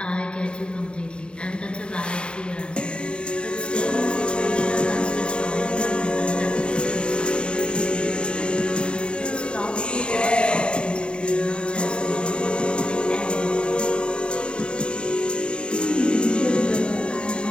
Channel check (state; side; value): late; right; 0.052 ms